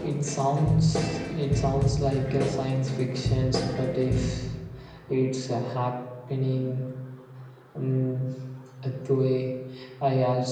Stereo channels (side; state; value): both; identical; correlation 1.00